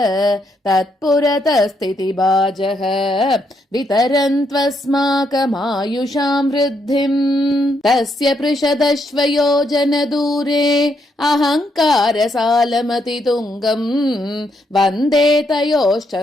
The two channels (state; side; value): normal; both; correlation 0.76